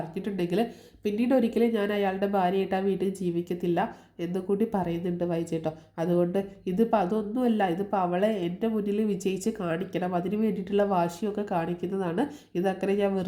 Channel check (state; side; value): identical; both; correlation 1.00